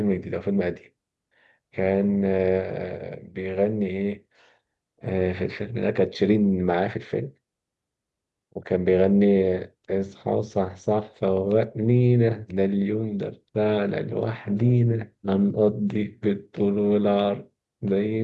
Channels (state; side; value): identical; both; correlation 1.00